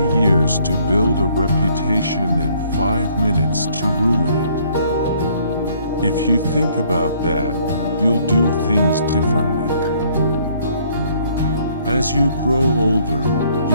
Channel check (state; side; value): inverted; both; correlation -0.63